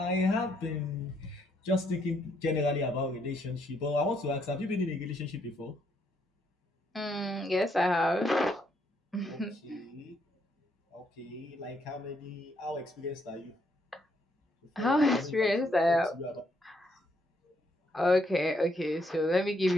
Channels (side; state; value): both; normal; correlation 0.73